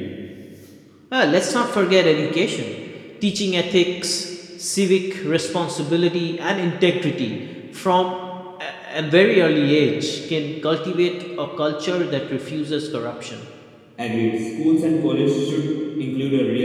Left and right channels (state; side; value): identical; both; correlation 1.00